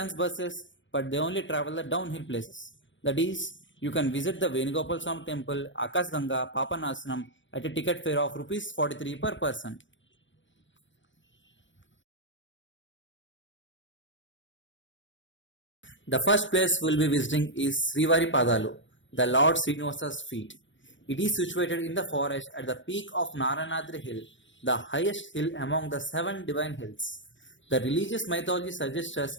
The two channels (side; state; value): right; late; 0.55 ms